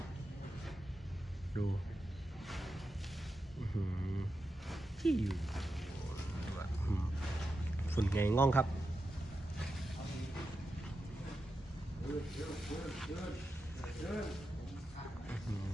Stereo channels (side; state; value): both; normal; correlation 0.89